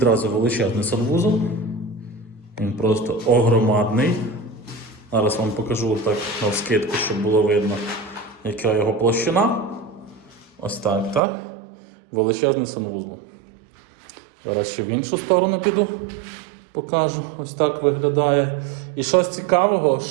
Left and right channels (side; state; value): left; drops out; at 11.2 s